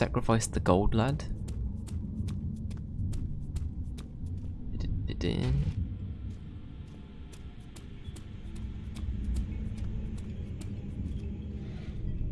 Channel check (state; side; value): identical; both; correlation 1.00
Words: the gold lad?